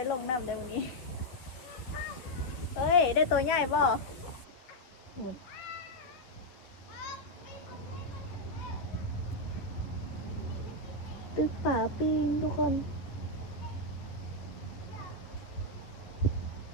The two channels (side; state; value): right; late; 11 ms